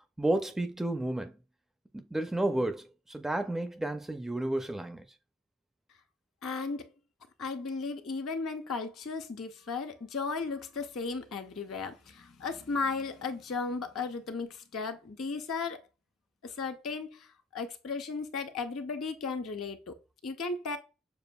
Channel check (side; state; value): both; normal; correlation 0.61